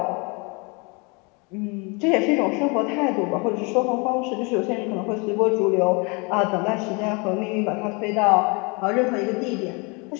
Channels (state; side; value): quieter; right; 30.4 dB